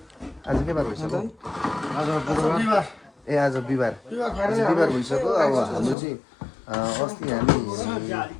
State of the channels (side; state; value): right; drops out; at 6.0 s